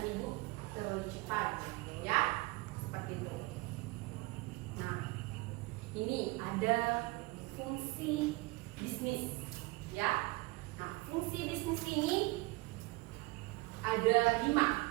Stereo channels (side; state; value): left; quieter; 23.6 dB